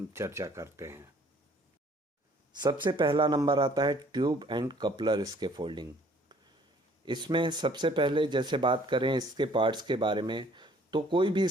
चर्चा करते हैं। सबसे पहला नंबर आता है ट्यूब एंड कपलर स्कैफोल्डिंग। इसमें सबसे पहले जैसे बात करें इसके पार्ट्स के बारे में, तो कोई भी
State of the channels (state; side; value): normal; both; correlation 0.58